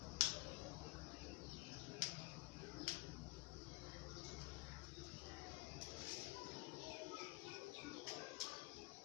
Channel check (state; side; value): quieter; right; 22.7 dB